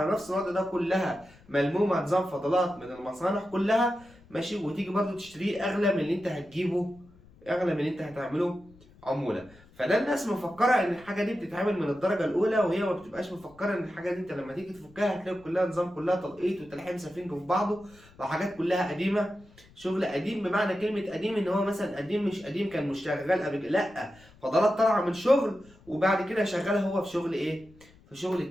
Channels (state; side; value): noise; left; rumble, 26 dB below the sound